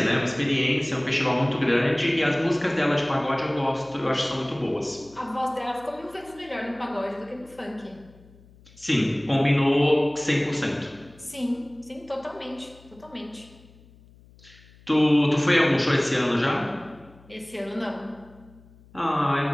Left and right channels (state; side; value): noise; left; hum, 25 dB below the sound